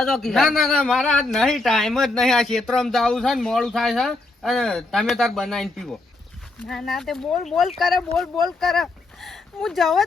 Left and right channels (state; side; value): quieter; right; 3.1 dB